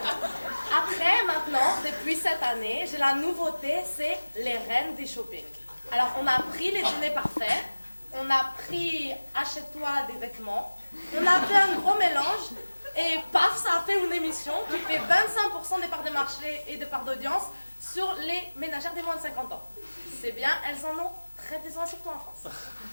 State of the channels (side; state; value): both; inverted; correlation -1.00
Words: Après, maintenant, depuis cette année, j'ai la nouveauté, c'est les reines du shopping. Alors, on a pris les dîners parfaits, on a pris achète-toi des vêtements, on a fait un gros mélange, et paf, ça a fait une émission qui fait 25% des parts de marché et de parts d'audience sur les ménagères des moins de 50 ans. C'est bien, elles en ont très besoin, surtout en France.